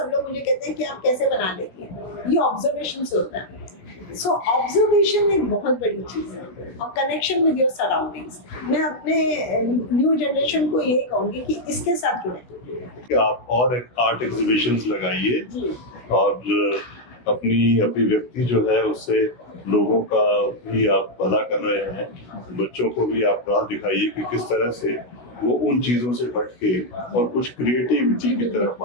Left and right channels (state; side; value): late; right; 16 ms